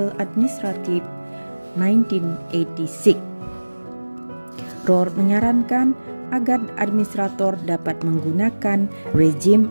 Administrative 1986. Rohr menyarankan agar administrator dapat menggunakan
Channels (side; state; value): both; inverted; correlation -1.00